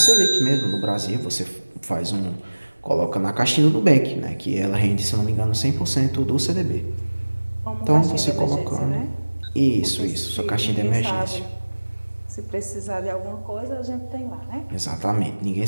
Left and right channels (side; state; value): both; inverted; correlation -1.00